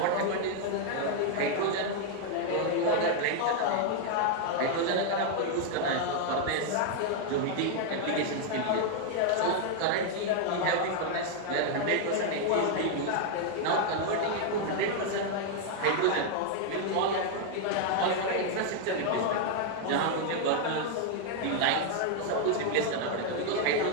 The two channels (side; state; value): both; different; correlation 0.00